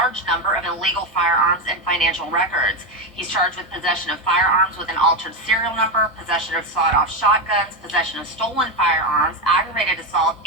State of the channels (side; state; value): both; normal; correlation 0.11